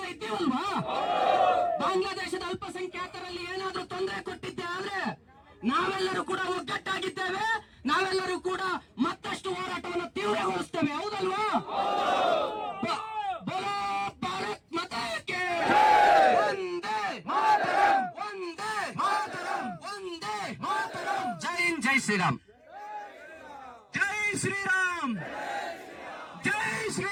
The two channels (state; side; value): identical; both; correlation 1.00